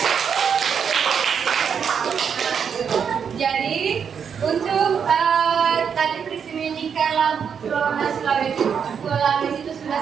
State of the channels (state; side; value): quieter; left; 7.1 dB